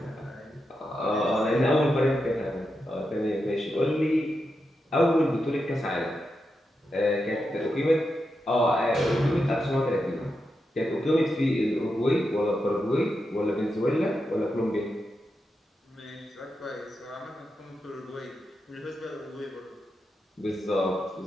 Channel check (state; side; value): normal; both; correlation 0.87